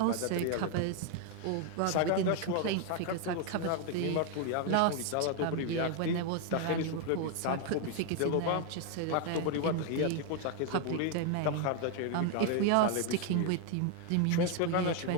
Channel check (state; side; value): different; both; correlation 0.01